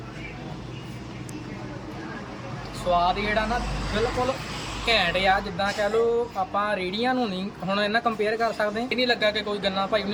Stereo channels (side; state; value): both; identical; correlation 1.00